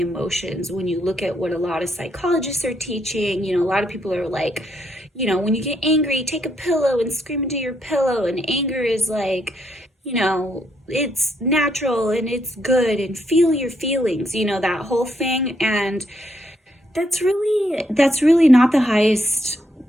emotions. When you look at what a lot of psychologists are teaching, a lot of people are like, when you get angry, take a pillow and scream into your pillow, and anger is like, it's natural and it's good, and feel your feelings, that whole thing. And that's really not the highest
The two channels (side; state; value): both; normal; correlation 0.75